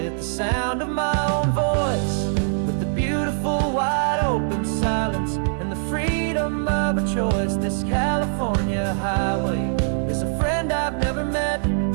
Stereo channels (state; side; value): silent; left; digital silence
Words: the sound of my own voice, with the beautiful wide open silence and the freedom of a choice. This California highway is a friend I've never met,